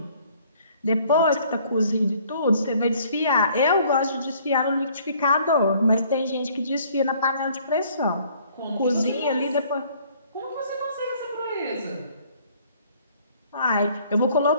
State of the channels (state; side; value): inverted; both; correlation -0.59